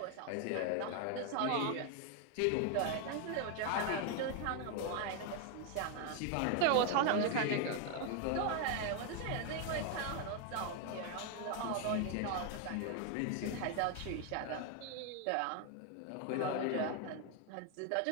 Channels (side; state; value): both; different; correlation 0.01